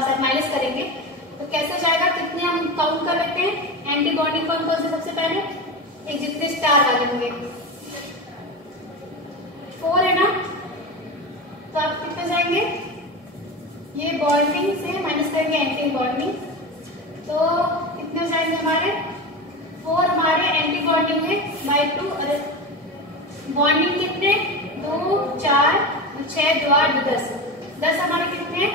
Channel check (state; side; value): normal; both; correlation 0.23